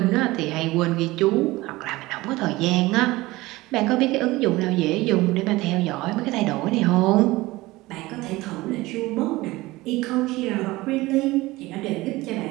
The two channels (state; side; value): quieter; left; 19.7 dB